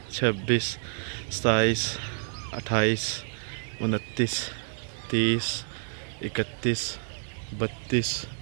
26 27 28 29 30 31 32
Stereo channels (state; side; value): silent; left; digital silence